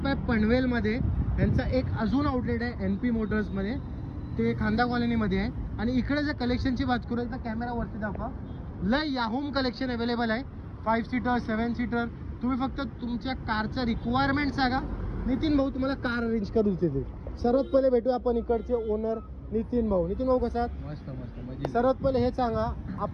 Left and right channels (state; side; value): identical; both; correlation 1.00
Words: आहे पनवेलमध्ये. यांचा एक अजून आउटलेट आहे NP मोटर्समध्ये, ते खांदा कॉलनीमध्ये आहे. आणि इकडे जर कलेक्शनची बात करू तर कॅमेरावरती दाखवा. लय याहूम कलेक्शन अवेलेबल आहे. 5 सीटर 7 सीटर. तुम्ही फक्त तुमच्या कारचं रिक्वायरमेंट सांगा, नितीन भाऊ तुम्हाला कार अरेंज करून देते. सर्वात पहिले भेटू आपण इकडचे ओनर नितीन भाऊ. नितीन भाऊ कसा? मस्त मस्त. सर्वात पहिले हे सांगा,